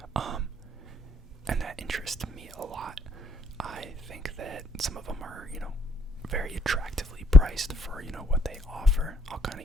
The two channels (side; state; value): both; normal; correlation 0.68